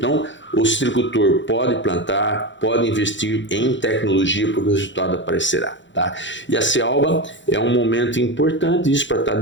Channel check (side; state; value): right; late; 0.54 ms